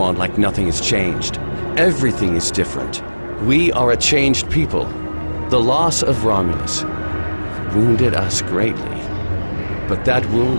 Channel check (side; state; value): both; inverted; correlation -1.00